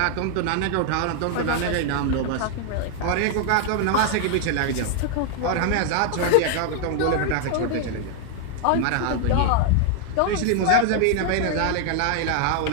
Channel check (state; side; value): different; both; correlation 0.00